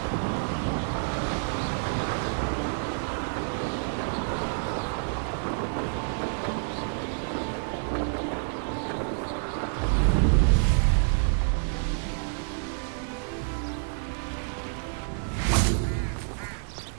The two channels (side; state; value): left; silent; digital silence